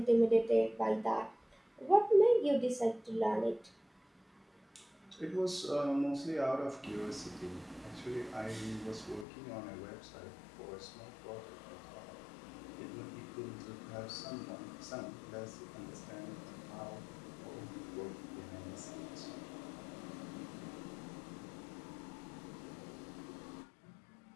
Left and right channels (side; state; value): right; drops out; at 9.2 s